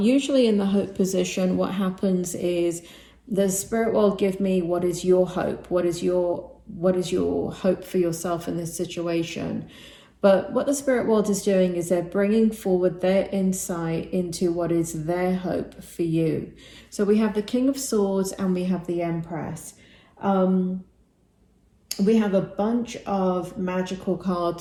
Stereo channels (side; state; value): both; identical; correlation 1.00